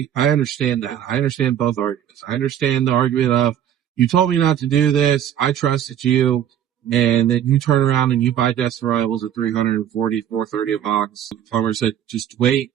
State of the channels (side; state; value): left; quieter; 10.1 dB